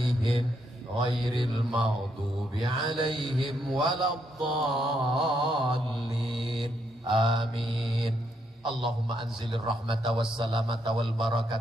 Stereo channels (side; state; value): both; normal; correlation 0.76